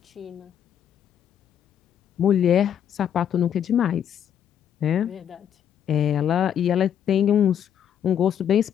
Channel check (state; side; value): quieter; right; 9.2 dB